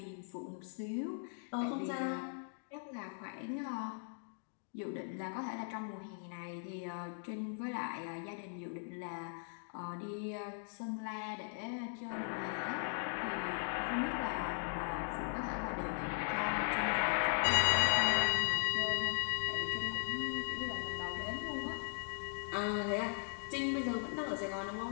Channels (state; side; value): silent; right; digital silence